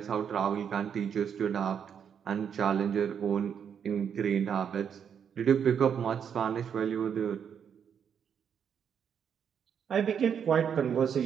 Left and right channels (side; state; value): left; quieter; 7.8 dB